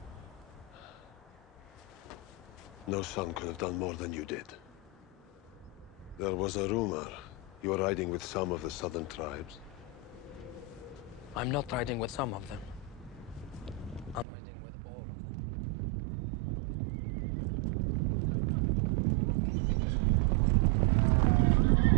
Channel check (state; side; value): drops out; left; at 14.2 s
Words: No son could have done more than you did. There was a rumor you were riding with some of the southern tribes. I'm not riding with some of them. I'm riding with all of them.